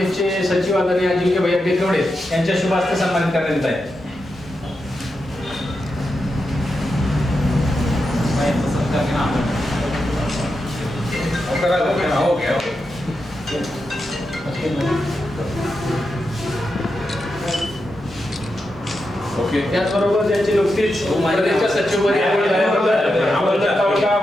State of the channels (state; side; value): normal; both; correlation 0.87